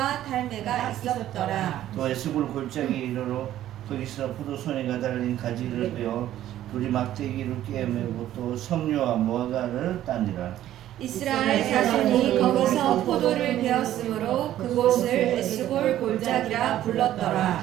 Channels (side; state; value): left; quieter; 12.7 dB